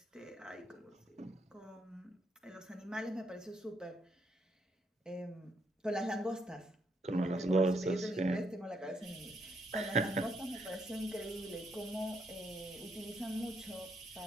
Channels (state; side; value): normal; both; correlation 0.75